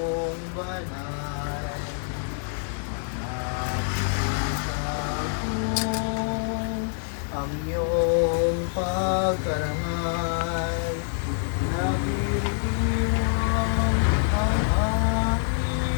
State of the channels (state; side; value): silent; right; digital silence